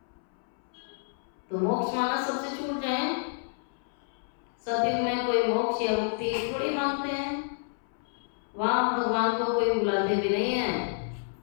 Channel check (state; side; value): silent; right; 58 dB below the other